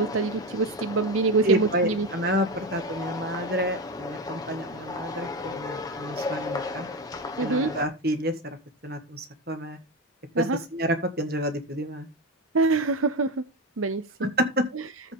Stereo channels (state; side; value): normal; both; correlation 0.17